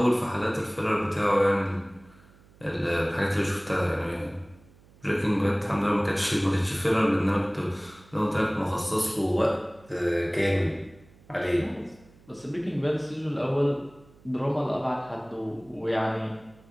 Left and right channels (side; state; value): right; noise; hum, 27 dB below the sound